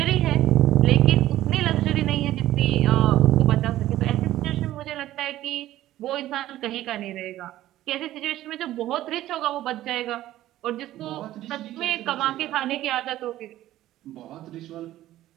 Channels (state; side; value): quieter; left; 14.3 dB